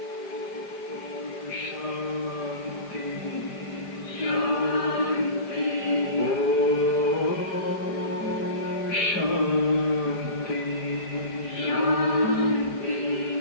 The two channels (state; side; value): late; right; 4.9 ms